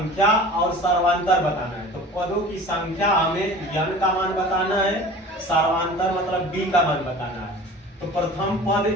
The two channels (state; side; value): normal; both; correlation 0.41